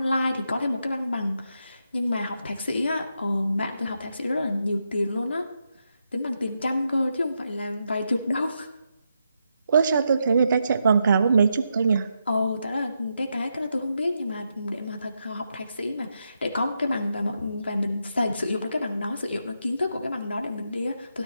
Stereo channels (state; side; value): inverted; both; correlation -0.83